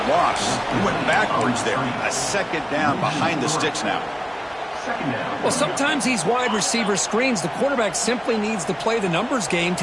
loss. He went backwards there. A second down behind the sticks now. Well, sometimes these wide receiver screens, the quarterback simply needs to play the numbers game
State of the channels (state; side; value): identical; both; correlation 1.00